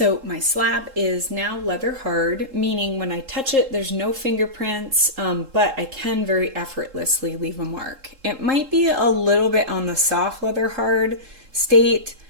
my slab is now leather hard, meaning when I touch it, there's no fingerprints, but I can very effortlessly leave a mark. It might be a little bit on the soft leather hard state,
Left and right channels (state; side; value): late; left; 3.7 ms